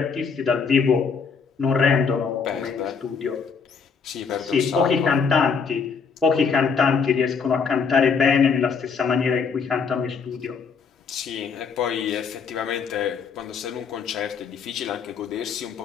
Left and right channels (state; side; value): quieter; right; 5.7 dB